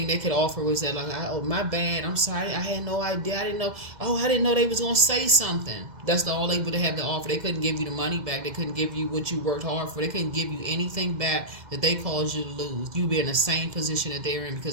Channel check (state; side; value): late; left; 2.1 ms